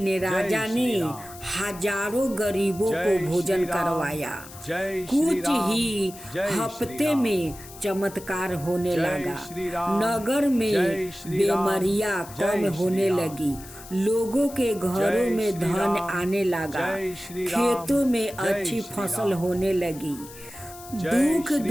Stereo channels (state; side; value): noise; left; hiss, 17 dB below the sound